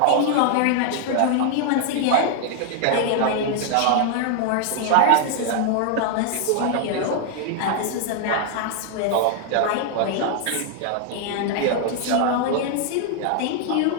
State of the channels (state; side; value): different; both; correlation 0.00